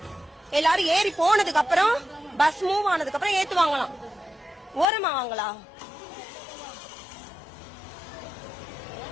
எல்லாரும் ஏறி போனதுக்கு அப்புறம் பஸ் மூவ் ஆனதுக்கு அப்புறம் ஏத்துவாங்களாம். ஓரமா வாங்களா?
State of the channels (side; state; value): right; drops out; at 4.9 s